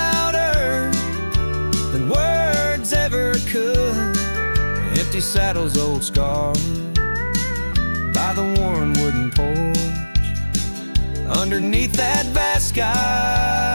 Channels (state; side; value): inverted; both; correlation -1.00